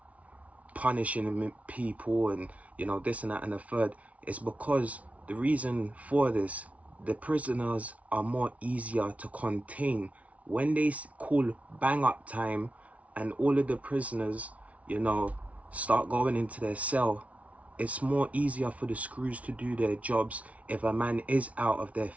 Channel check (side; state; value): left; late; 0.066 ms